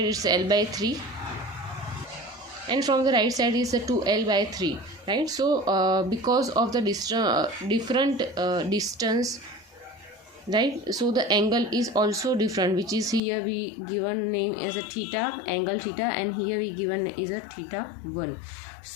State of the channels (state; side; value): drops out; right; at 13.2 s